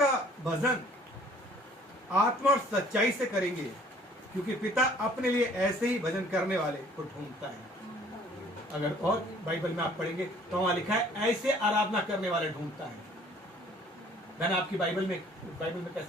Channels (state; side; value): normal; both; correlation 0.55